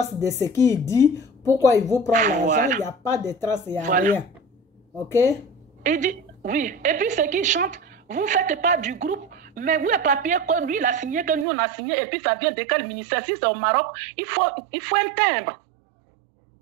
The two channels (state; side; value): drops out; left; at 11.5 s